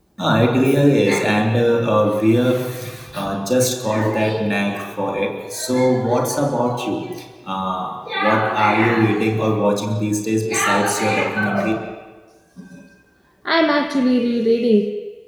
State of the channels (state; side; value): identical; both; correlation 1.00